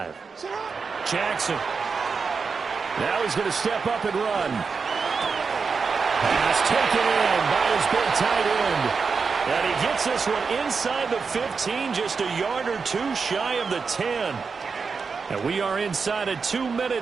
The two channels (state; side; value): quieter; left; 5.1 dB